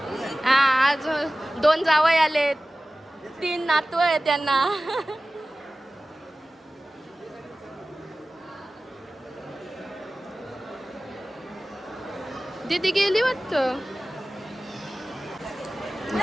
हां. आज 2 जावई आलेत, 3 नातू आहे त्यांना. दीदी गेली वाटतं.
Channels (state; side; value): normal; both; correlation 0.97